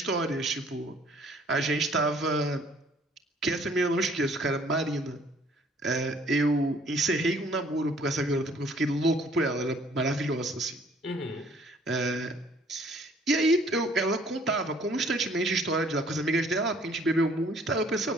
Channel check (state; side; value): normal; both; correlation 0.59